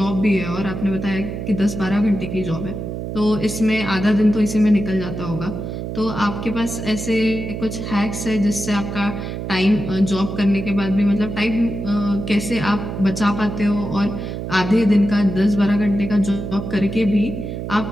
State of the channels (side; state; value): right; noise; hum, 6 dB below the sound